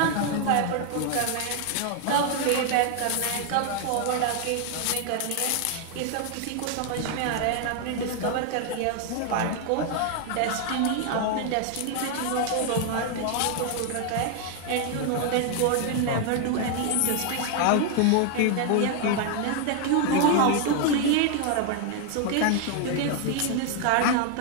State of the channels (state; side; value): different; both; correlation 0.00